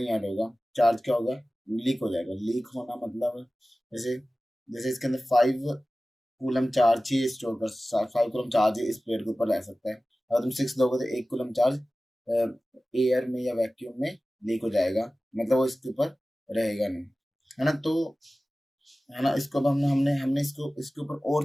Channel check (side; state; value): both; normal; correlation 0.96